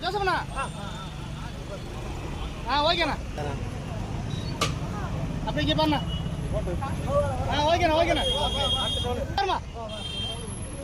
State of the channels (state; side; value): identical; both; correlation 1.00